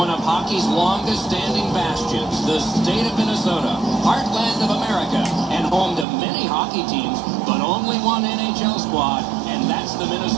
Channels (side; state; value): left; drops out; at 6.1 s